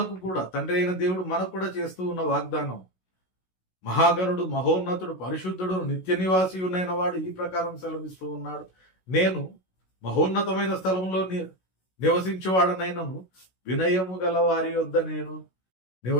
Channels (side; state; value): right; late; 16 ms